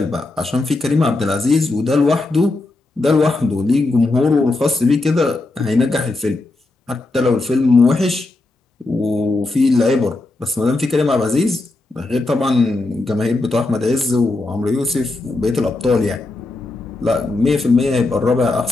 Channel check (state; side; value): quieter; right; 3.1 dB